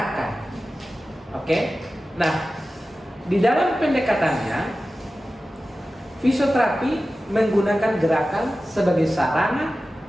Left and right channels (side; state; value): both; normal; correlation 0.95